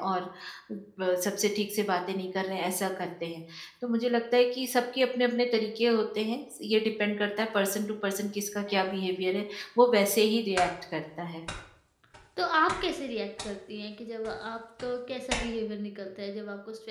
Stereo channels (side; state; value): both; identical; correlation 1.00